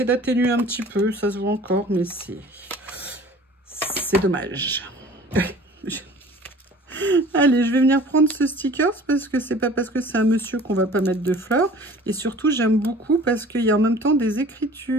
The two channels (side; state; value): both; normal; correlation 0.46